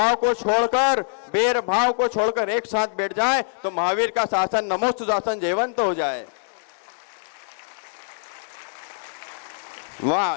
को छोड़कर, बैरभाव को छोड़कर एक साथ बैठ जाए तो महावीर का शासन नमोस्तु शासन जयवंत हो जाए।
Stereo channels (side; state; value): right; silent; digital silence